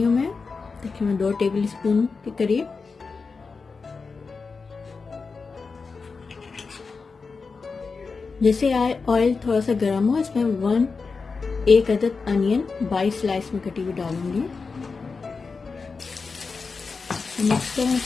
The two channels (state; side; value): quieter; right; 4.6 dB